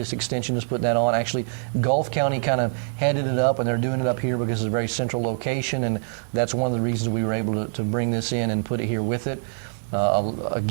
Extension is putting that on. Actually, Gulf County kind of headed it up, and they're doing it up here because it's a very central location, and that's one of the reasons we were able to bring this in and put it here with it.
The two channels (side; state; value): left; silent; digital silence